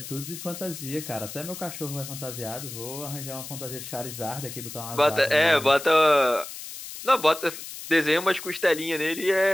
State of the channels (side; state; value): left; noise; hiss, 11 dB below the sound